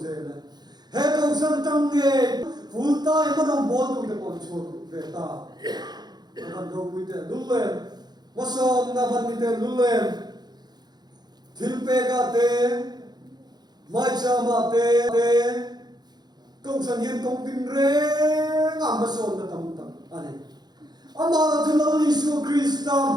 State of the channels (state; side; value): late; left; 0.20 ms